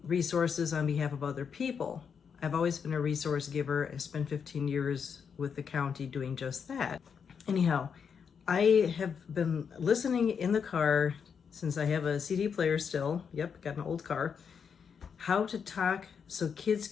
resources on behalf of other people. I've always been a resource giver. I spent 15 years with the county doing just that. Anyhow, I have been listening in the car since I have a CD player still. Yep, got an old car. How to talk so kids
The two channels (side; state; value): right; quieter; 6.7 dB